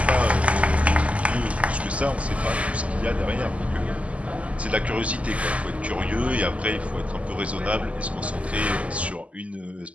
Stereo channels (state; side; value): late; left; 0.065 ms